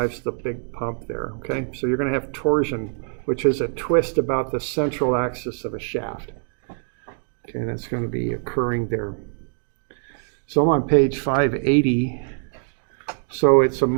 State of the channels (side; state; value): left; silent; 56 dB below the other